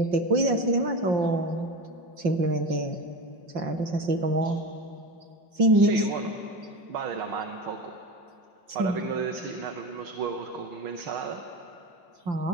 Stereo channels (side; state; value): left; late; 5.8 ms